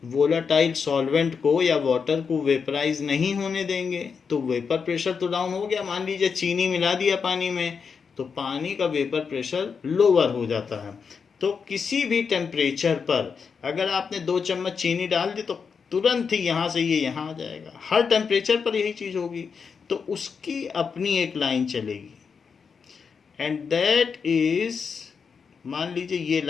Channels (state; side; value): quieter; right; 5.9 dB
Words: वोलेटाइल सॉल्वेंट को या वाटर को वेपराइज नहीं होने देंगे तो वेपर प्रेशर तो डाउन हो गया। मान लीजिए चीनी मिला दिया पानी में तो पानी का वेपर प्रेशर लोअर हो जाता है। तो किसी भी टेम्परेचर पर अगर आपने 2 चम्मच चीनी डाल दी तो तुरंत ही यहाँ से ये यहाँ आ जाएगा। हर टेम्परेचर पर यही चीज़ होगी। तो उसकी अपनी एक लाइन चलेगी एंड दैट इज, मान लीजिए ये